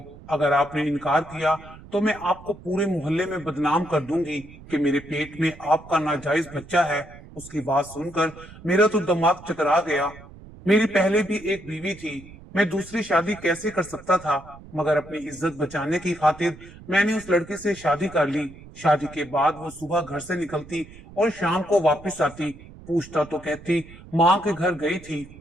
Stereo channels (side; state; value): right; noise; rumble, 19 dB below the sound